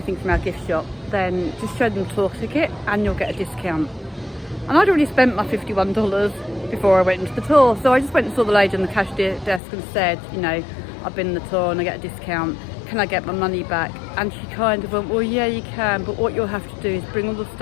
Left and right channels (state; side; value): drops out; right; at 9.6 s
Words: from our gift shop, then just show them the tour ticket and you'll get a discount. And I'd already spent my $51 before I went into the tour, so I just went and saw the lady on the cash desk and said, you know, I've been in the tour and I get a discount, can I get my money back? And she kind of went, well yeah you can, but what you'll have to do is bring all the